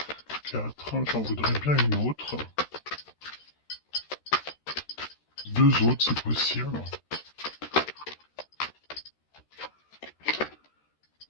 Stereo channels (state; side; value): late; right; 13 ms